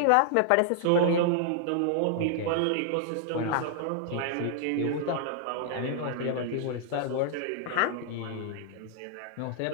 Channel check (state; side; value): different; both; correlation -0.01